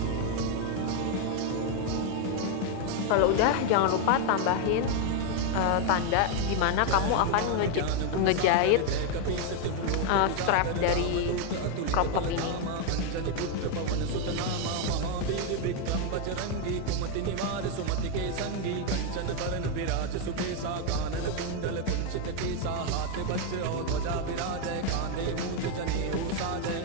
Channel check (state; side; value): different; both; correlation 0.01